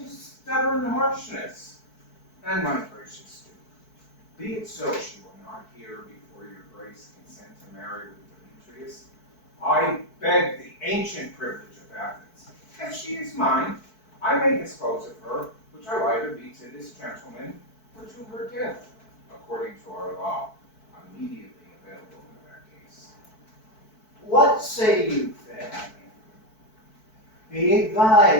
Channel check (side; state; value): right; late; 4.6 ms